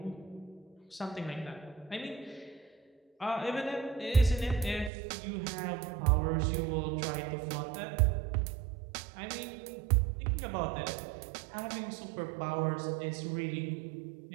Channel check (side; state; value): left; drops out; at 4.9 s